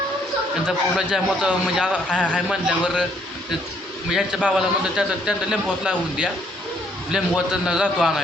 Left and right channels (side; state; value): both; normal; correlation 0.67